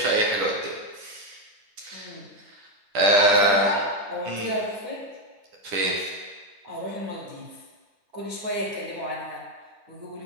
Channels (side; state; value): left; late; 10 ms